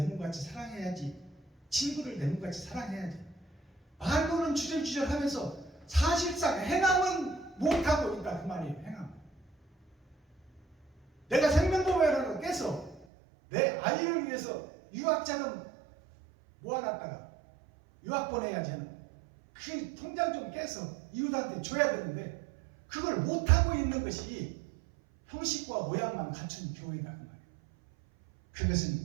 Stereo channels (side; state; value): left; drops out; at 13.1 s